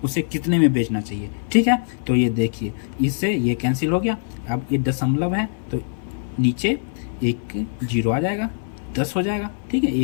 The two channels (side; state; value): right; silent; 57 dB below the other